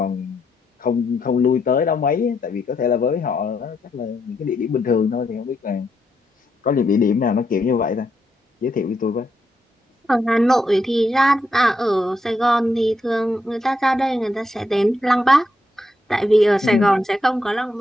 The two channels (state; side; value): normal; both; correlation 0.79